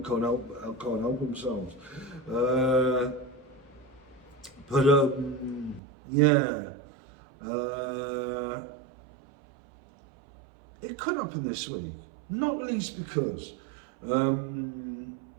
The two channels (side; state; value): left; drops out; at 5.8 s